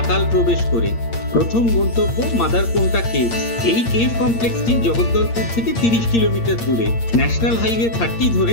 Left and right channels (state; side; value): late; right; 8.7 ms